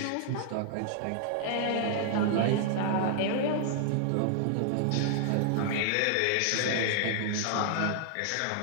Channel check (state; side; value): different; both; correlation -0.01